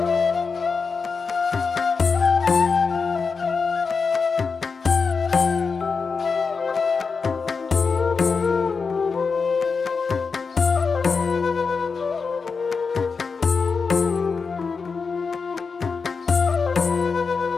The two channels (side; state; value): right; quieter; 5.1 dB